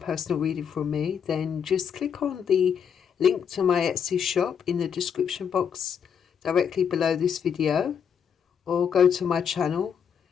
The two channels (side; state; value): right; quieter; 7.6 dB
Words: reading from me, then just click on the link to my Etsy shop in the description box directly below this video, or go to my channel